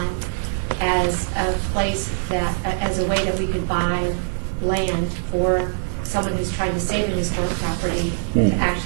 as a place that, as a way that we could buy land for someone who's trying to save an historic property to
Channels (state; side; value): silent; left; digital silence